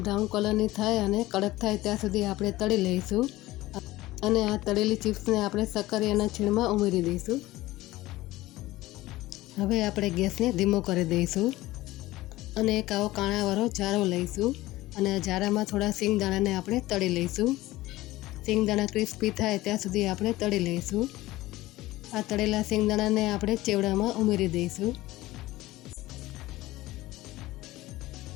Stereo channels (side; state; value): right; quieter; 17.6 dB